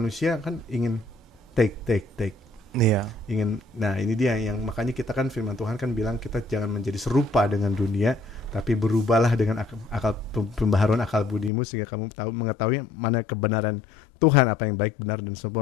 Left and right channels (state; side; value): drops out; right; at 11.5 s